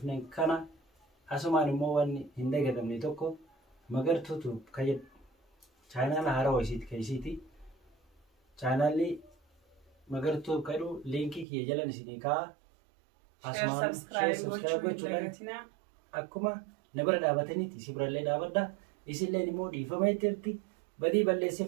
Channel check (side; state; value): left; drops out; at 11.5 s